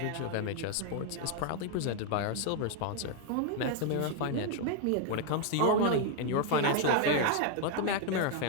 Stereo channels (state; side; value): different; both; correlation 0.00